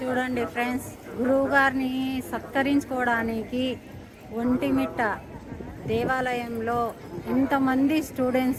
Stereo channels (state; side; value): identical; both; correlation 1.00